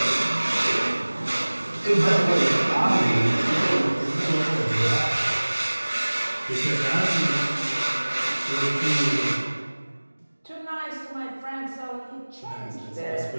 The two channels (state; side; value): inverted; both; correlation -1.00